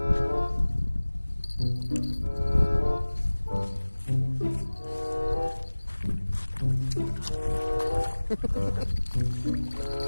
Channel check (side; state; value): both; inverted; correlation -1.00